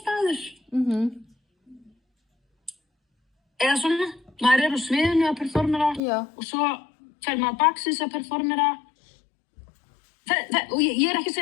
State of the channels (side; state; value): right; drops out; at 6.0 s